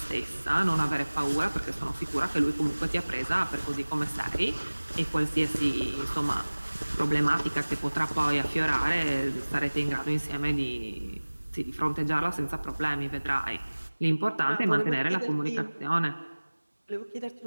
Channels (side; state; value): both; inverted; correlation -1.00